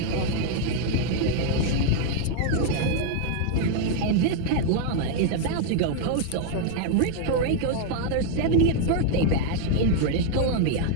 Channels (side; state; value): both; different; correlation 0.00